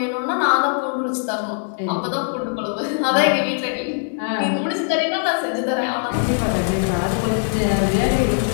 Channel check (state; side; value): silent; right; digital silence